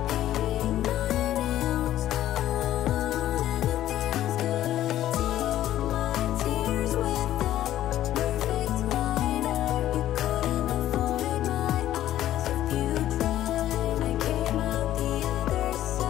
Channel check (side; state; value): right; quieter; 13.0 dB